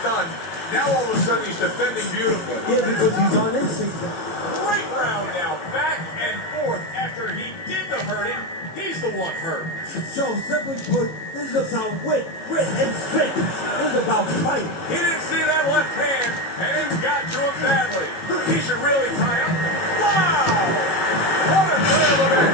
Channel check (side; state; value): right; late; 18 ms